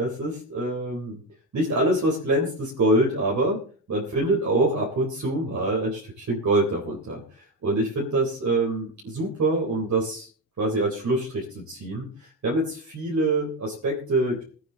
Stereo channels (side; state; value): both; normal; correlation 0.14